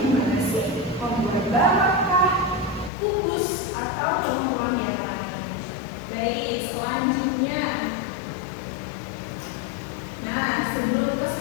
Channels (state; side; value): drops out; right; at 2.9 s